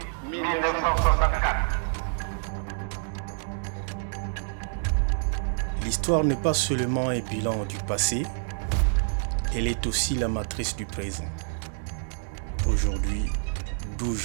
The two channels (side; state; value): left; silent; digital silence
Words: 1964. L'histoire n'est pas seulement un bilan du passé, elle est aussi la matrice du présent. Aujourd'hui, 12